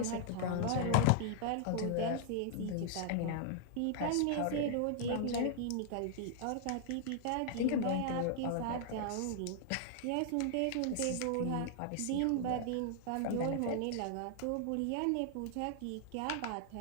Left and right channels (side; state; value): both; different; correlation -0.01